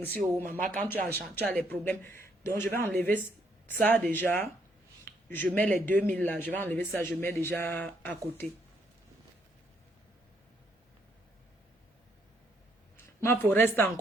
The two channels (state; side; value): normal; both; correlation 0.71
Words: maman, quand tu as les problèmes. Donc, je vais enlever ça déjà. Je mets les 2000 là. Je vais enlever ça, je mets déjà à côté. Ma faut rester